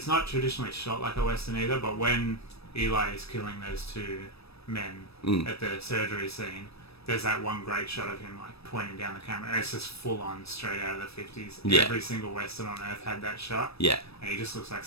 traditionally shot like a Western either, but when Eli is killing those two men at the surgery scene, there's that one great shot of him like pointing down the camera. It's just full on straight out of the 50s. Yeah. Every single Western on earth had that shot. Yeah. And he just looks like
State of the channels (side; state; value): right; late; 0.78 ms